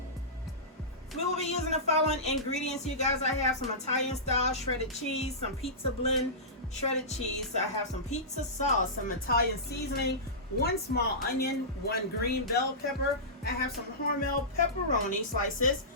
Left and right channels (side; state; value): both; normal; correlation -0.18